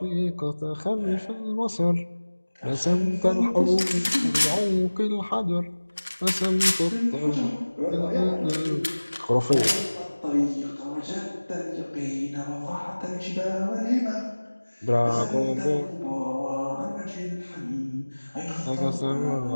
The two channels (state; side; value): inverted; both; correlation -1.00